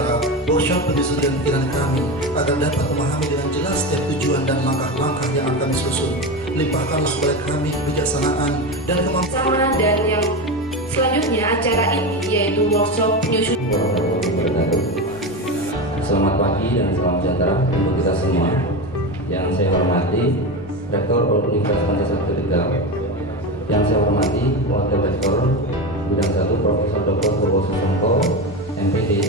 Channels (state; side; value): normal; both; correlation 0.20